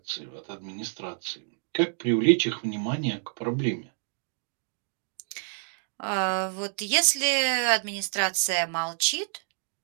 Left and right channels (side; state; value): left; silent; digital silence